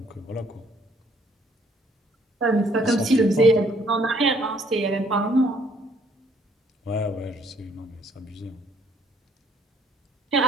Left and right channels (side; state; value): both; normal; correlation 0.64